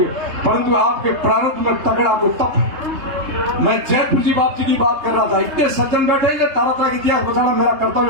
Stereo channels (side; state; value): left; late; 3.3 ms